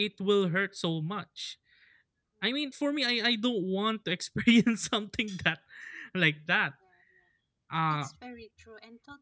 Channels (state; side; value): identical; both; correlation 1.00